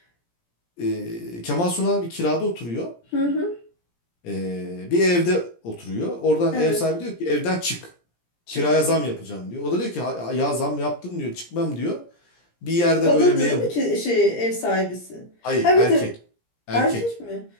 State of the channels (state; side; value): late; right; 17 ms